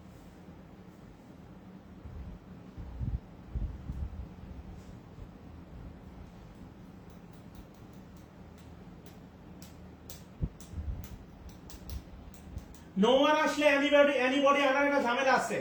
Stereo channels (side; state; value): both; identical; correlation 1.00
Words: নো ওয়ান আসলে এনিবডি আনার একটা ঝামেলা আছে।